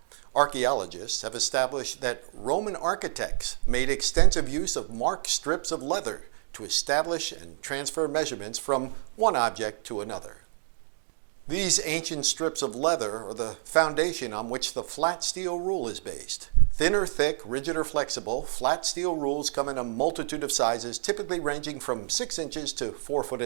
Archaeologists have established that Roman architects made extensive use of marked strips of leather to establish and transfer measurements from one object to another. These ancient strips of leather are the foundation on which the flat steel rule is based. Thin or thick, rigid or flexible, flat steel rules come in a multitude of sizes, typically ranging from 6 inches to 4 foot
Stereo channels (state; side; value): silent; left; digital silence